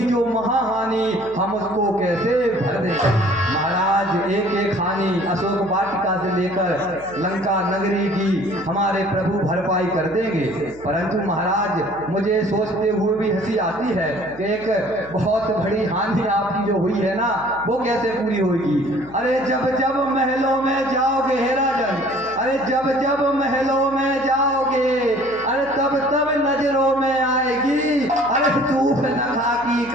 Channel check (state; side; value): noise; left; hum, 22 dB below the sound